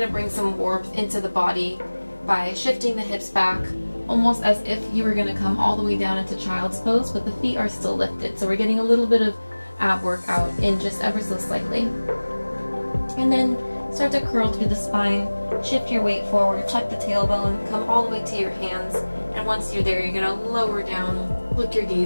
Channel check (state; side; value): inverted; both; correlation -1.00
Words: to bring some warmth into the body by shifting the hips back, almost as if you were going to come all the way down into child's pose, but the feet are still lifted. So we're getting a little bit of ab workout in just ever so slightly. And then start to curl through the spine, shift your weight forward, tuck the tailbone, come all the way to your hands, and once you're there, you're going to lower down, look your